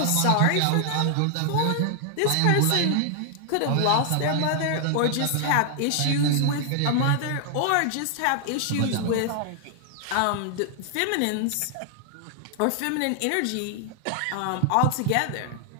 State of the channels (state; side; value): different; both; correlation 0.00